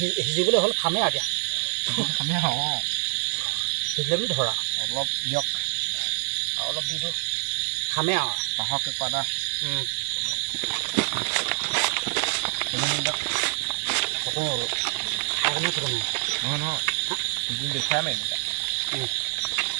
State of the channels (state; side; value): silent; left; digital silence